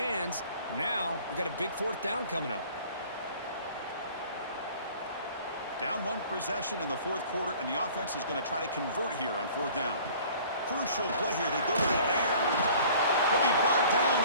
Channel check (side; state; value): both; inverted; correlation -0.50